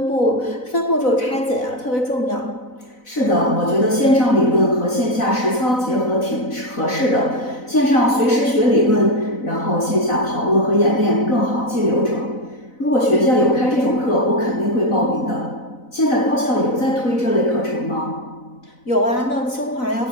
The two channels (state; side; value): late; right; 4.0 ms